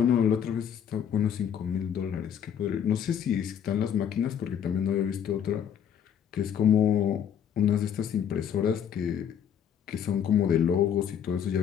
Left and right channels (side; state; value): right; quieter; 8.6 dB